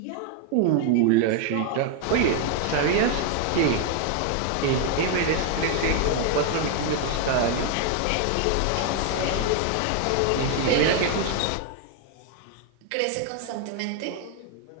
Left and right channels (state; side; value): different; both; correlation 0.00